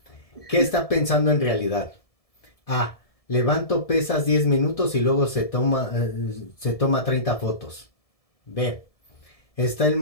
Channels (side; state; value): right; late; 1.7 ms